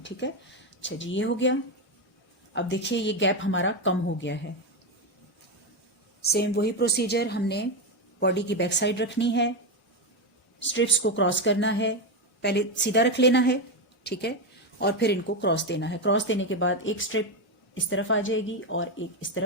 ठीक है। अच्छा जी, ये हो गया। अब देखिए ये गैप हमारा कम हो गया है। सेम वही प्रोसीजर, हमने बॉडी की बैक साइड रखनी है, स्ट्रिप्स को क्रॉस करना है, पहले सीधा रख लेना है, ठीक है, और फिर इनको क्रॉस देना है। क्रॉस देने के बाद एक स्ट्रिप इस तरफ आ जाएगी और एक इस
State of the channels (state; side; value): normal; both; correlation 0.10